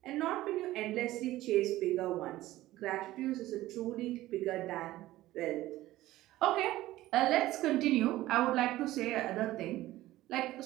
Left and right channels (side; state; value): left; quieter; 16.1 dB